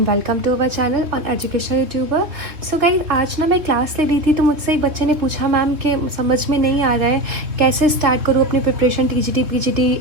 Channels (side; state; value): left; late; 3.3 ms